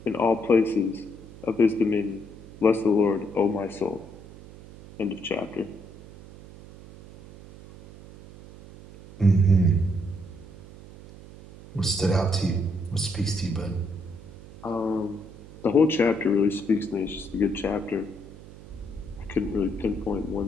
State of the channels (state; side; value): noise; right; hum, 18 dB below the sound